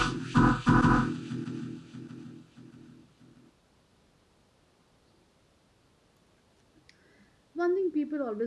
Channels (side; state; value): both; identical; correlation 1.00